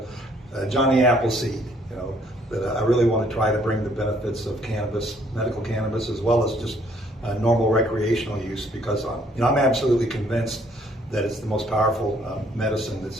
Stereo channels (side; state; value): both; normal; correlation 0.64